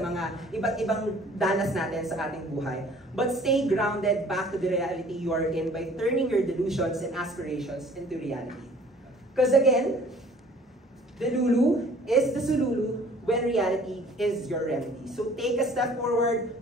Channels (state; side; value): normal; both; correlation 0.52